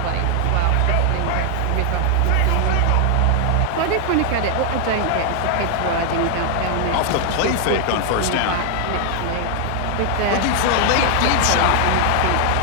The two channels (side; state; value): both; different; correlation 0.00